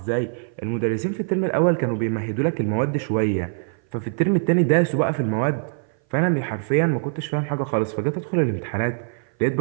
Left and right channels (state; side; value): silent; left; 58 dB below the other